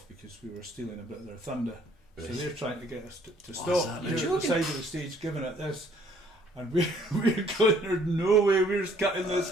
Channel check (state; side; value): normal; both; correlation 0.61